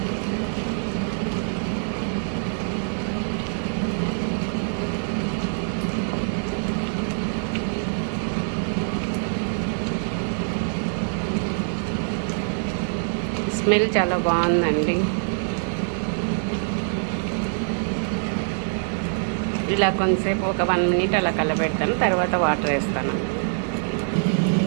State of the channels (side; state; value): left; silent; digital silence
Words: స్మెల్ చాలా బాగుందండి. ఇలా కొంతసేపు ఒక 1 మినిట్ అలా కలబెడతాను, తర్వాత వాటర్ వేస్తాను.